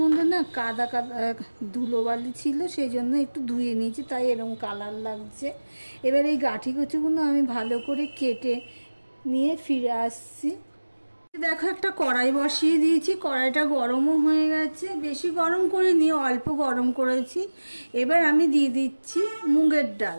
না কাদা কাদা ধুলোবালি ছিল, সেই জন্য একটু ধুয়ে নিয়েছি, তাই এরকম কালার লাগছে। এবার এই গাঠি কচুগুলো আমি ভালো করে কেটে নিয়ে ফিরে আসছি। দেখো, একটা কড়াই বসিয়ে দিয়েছি, কড়াইটা গরমও হয়ে গেছে, বেশি গরম করে নিয়ে অল্প গরম করেছি। এবার আমি দিয়ে দিচ্ছি মুগের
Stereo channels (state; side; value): inverted; both; correlation -1.00